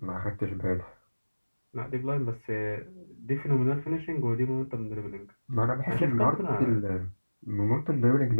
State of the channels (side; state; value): both; inverted; correlation -1.00